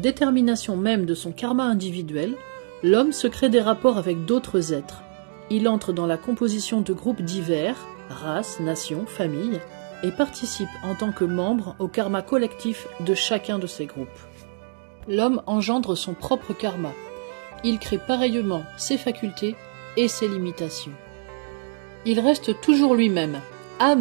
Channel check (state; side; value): silent; left; digital silence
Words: même de son karma individuel, l'homme se crée des rapports avec d'autres êtres. Il entre dans la composition de groupes divers, races, nations, familles, et participe en tant que membre au karma collectif de chacun de ces groupes. L'homme engendre son propre karma. Il crée pareillement ses facultés et ses limitations. Il reste toujours lui-même,